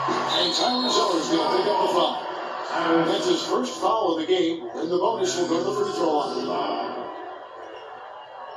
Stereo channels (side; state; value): both; identical; correlation 1.00